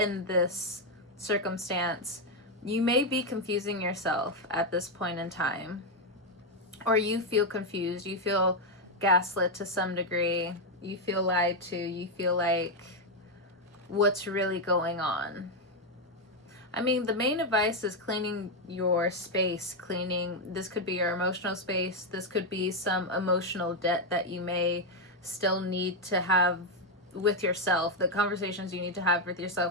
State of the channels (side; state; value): both; normal; correlation 0.04